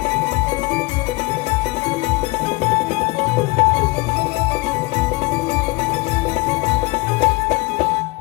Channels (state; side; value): quieter; right; 23.7 dB